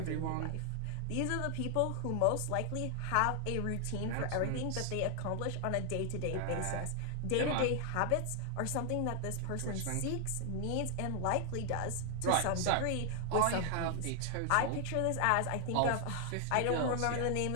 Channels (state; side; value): different; both; correlation 0.00